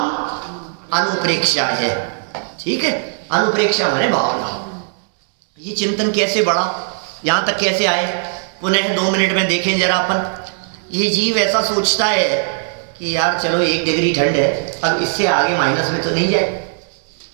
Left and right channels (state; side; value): silent; left; digital silence